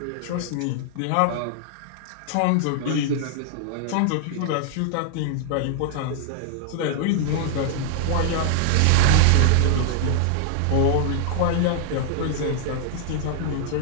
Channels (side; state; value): both; different; correlation -0.01